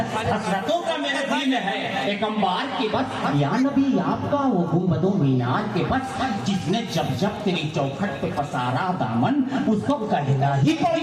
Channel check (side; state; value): both; identical; correlation 1.00